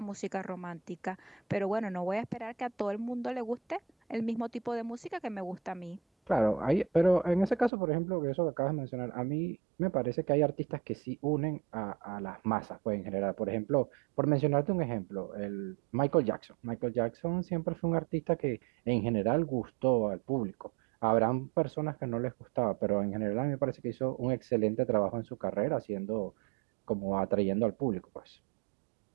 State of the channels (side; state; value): left; drops out; at 7.7 s